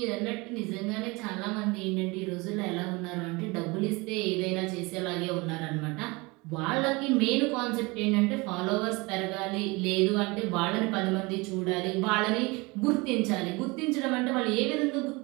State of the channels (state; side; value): quieter; left; 25.2 dB